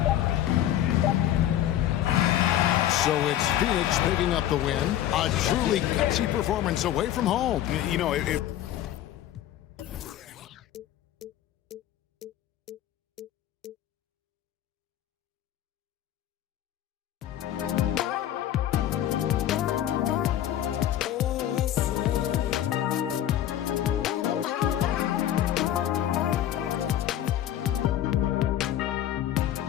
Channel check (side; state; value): right; quieter; 12.0 dB